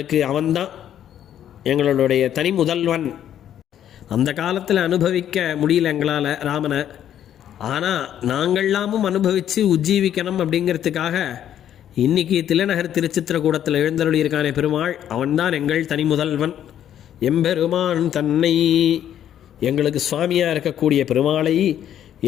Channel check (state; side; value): quieter; right; 10.5 dB